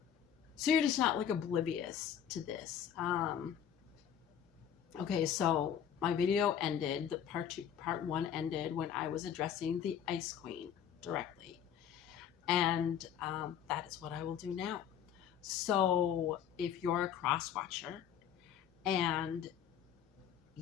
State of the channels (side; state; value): right; quieter; 8.9 dB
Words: so you're just not like oblivious to this. Okay, so my video ended, the part one ended when I was addressing the Ice Queen directly. And that is what I will do now. So if you're a cross watcher and